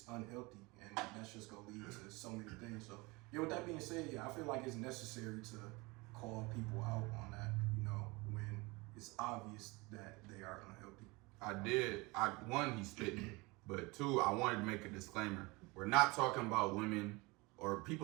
unhealthy and that's just gonna lead to so many things. So yeah, with that being said, yeah, I feel like it's necessary to call people out on that, you know, when it's obvious that they are unhealthy. One, he's spitting, but two, I wanted to make a disclaimer. We're not talking about women or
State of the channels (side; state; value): left; quieter; 24.8 dB